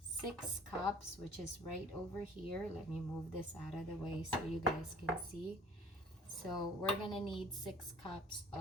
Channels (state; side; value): normal; both; correlation 0.50